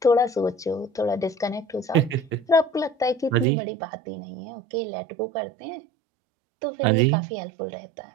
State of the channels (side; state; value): left; drops out; at 3.5 s